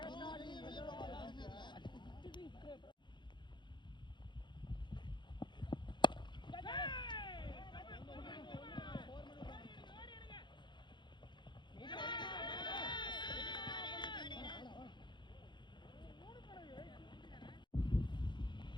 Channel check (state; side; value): late; right; 0.22 ms